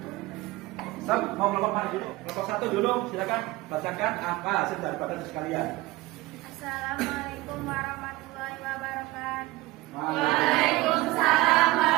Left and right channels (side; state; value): left; quieter; 20.0 dB